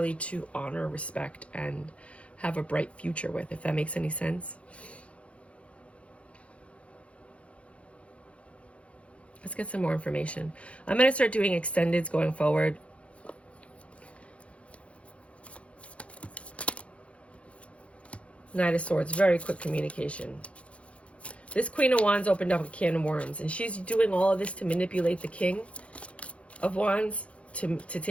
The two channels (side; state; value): right; late; 0.062 ms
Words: to honor, respect, and have a bright future with, if that makes any sense. Let's get some more information. I'm going to start doing extendeds going forward. Knight of Swords, very quick communication. This Queen of Wands opened up a can of worms, and she's doing all of this to manipulate the King of Wands to